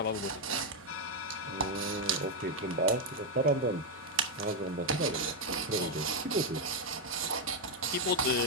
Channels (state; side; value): normal; both; correlation 0.02